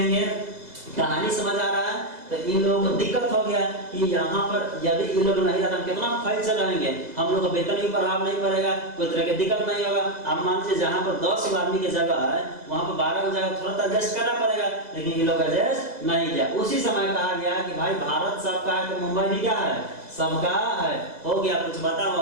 कहानी समझ आ रहा है? तो इन लोगों को दिक्कत हो गया कि यहाँ पर यदि इन लोग नहीं रहता कितना फाइल चलाएंगे, हम लोग का वेतन भी प्रभाव नहीं पड़ेगा, कोई तरह की दिक्कत नहीं होगा। आप मान लीजिए जहाँ पर 10 आदमी की जगह है वहाँ पर 12 की जगह थोड़ा सा एडजस्ट करना पड़ेगा, लेकिन ये लोग एडजस्ट नहीं किया। उसी समय कहा गया कि भाई भारत सबका है तो मुंबई भी क्या है? सबका है। हो गया कुछ बताओ,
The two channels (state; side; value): late; left; 2.0 ms